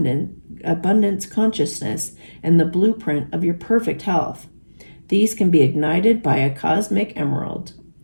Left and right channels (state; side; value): inverted; both; correlation -1.00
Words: consciousness and the blueprint of your perfect health. These can be ignited by a cosmic emerald.